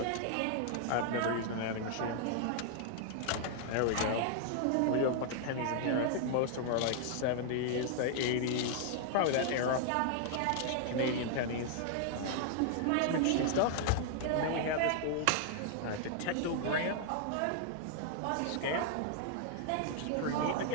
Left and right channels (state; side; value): different; both; correlation 0.00